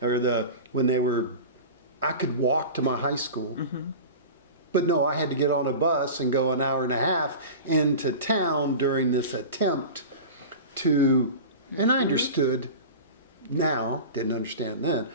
I could walk to my high school. But no, I had to get on a bus and go an hour and a half into town during this attempt to, and I understood now, didn't understand then,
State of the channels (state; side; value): inverted; both; correlation -0.32